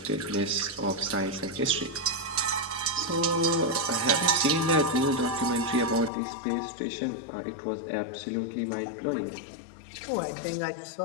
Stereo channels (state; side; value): drops out; right; at 6.1 s